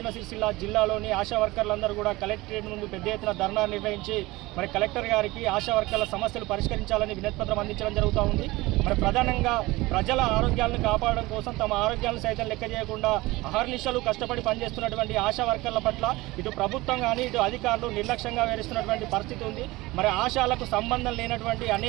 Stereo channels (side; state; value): left; quieter; 20.5 dB